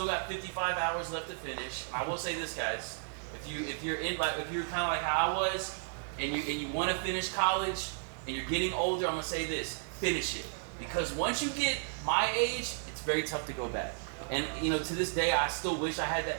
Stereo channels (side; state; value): left; silent; digital silence